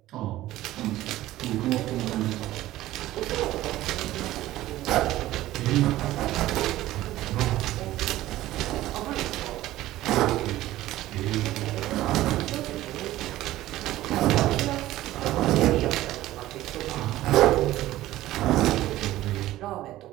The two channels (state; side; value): quieter; left; 15.5 dB